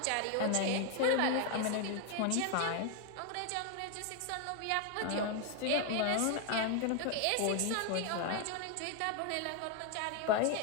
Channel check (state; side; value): different; both; correlation 0.01